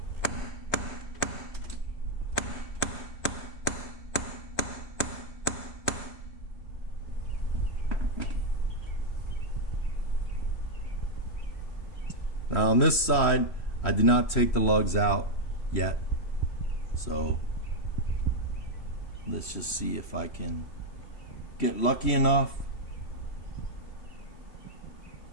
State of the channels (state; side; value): late; right; 3.0 ms